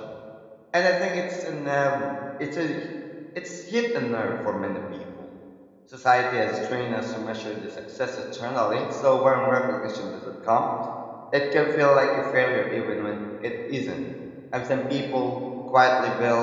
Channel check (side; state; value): both; identical; correlation 1.00